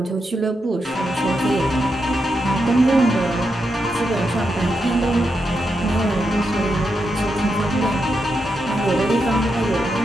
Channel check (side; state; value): both; normal; correlation 0.85